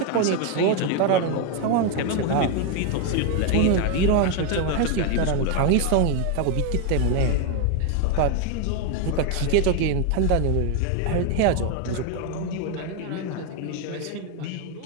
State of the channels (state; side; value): different; both; correlation 0.01